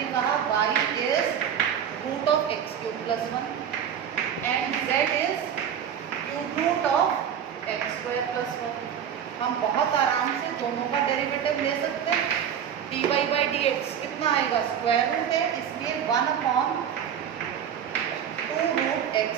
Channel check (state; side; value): quieter; left; 8.7 dB